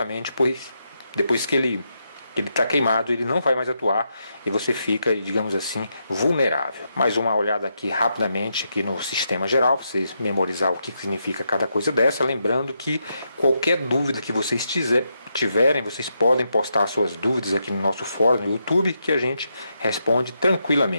pois depois que ele está queimado, ele não vai mais atuar e você fica, digamos assim, vulnerável. Mais uma olhada aqui rapidamente aqui no sistema geral, para vocês memorizar o que significa cada coisa dessa, lembrando que qualquer dúvida que vocês tiverem, vocês podem postar suas dúvidas aqui no nosso fórum no YouTube, que a gente responde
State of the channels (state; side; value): inverted; both; correlation -0.82